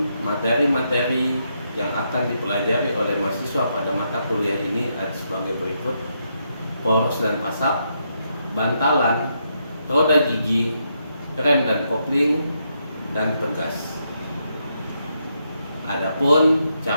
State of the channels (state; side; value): inverted; both; correlation -0.80